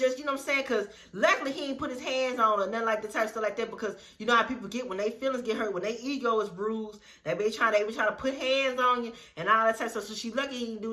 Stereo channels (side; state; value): both; identical; correlation 1.00